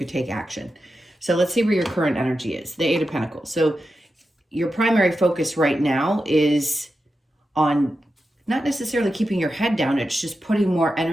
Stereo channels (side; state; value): both; normal; correlation 0.90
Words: take action. So let's see where your current energy is. The Eight of Pentacles. So your primary focus right now is on not necessarily keeping your head down. It's just putting more